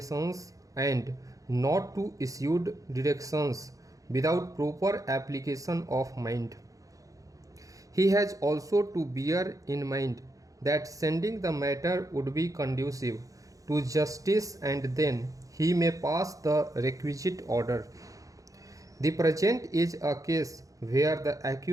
and not to issue directions without proper application of mind. He has also to bear in mind that sending the matter would be conducive to justice, and then he may pass the requisite order. The present is a case where the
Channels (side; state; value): left; late; 0.16 ms